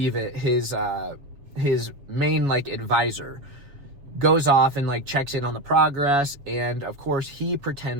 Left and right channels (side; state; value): left; late; 7.2 ms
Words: it, his main like advisor goes off and like checks in on the progress. And of course he